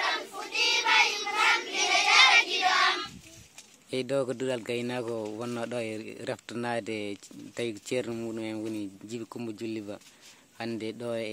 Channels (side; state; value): both; identical; correlation 1.00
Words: fuɗɗima yimɓam ina jara giɗo am e ɗo ko duɗal gaynako wonno ɗo e reftanade tawi ceerno muɗum en woni Djiby Coumba Jully Ba hande ɗo